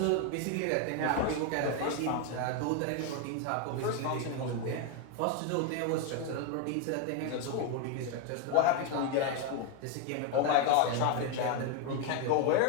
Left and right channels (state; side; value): different; both; correlation 0.01